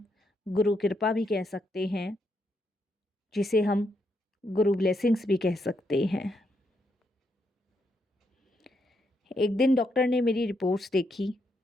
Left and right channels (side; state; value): both; normal; correlation 0.79